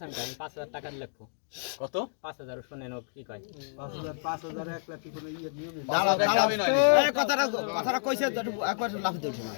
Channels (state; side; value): silent; right; digital silence